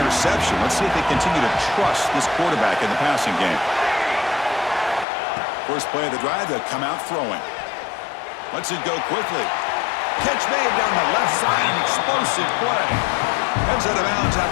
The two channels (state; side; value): drops out; right; at 5.1 s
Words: Let's see if they continue to trust this quarterback in the passing game. First play of the drive, they'll come out throwing. Lets it go quickly. Catch made down the left side, an explosive play. Heads out of bounds